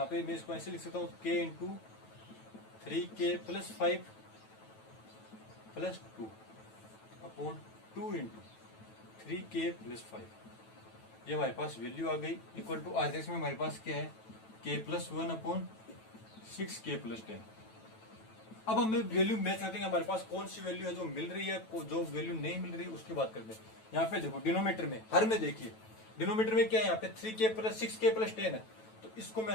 पे मैं इसको ऐसे लिख सकता हूँ k into 3k plus 5 plus 2 upon 2 into 3k plus 5, ये हमारे पास वैल्यू आ गई इक्वल टू RHS में हमारे पास क्या है k plus 1 upon 6k plus 10। अब हमें वैल्यू मैच करते हैं हमारे पास कौन सी वैल्यू है जो मिल रही है, जो वैल्यू नहीं मिल रही है उसकी बात करते हैं। यहाँ पे देखो डिनोमीटर में, हर में देखिए डिनोमीटर में क्या है, यहाँ पे 3k प्लस 6k प्लस 10 है, तो इसको मैं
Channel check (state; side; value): late; right; 9.1 ms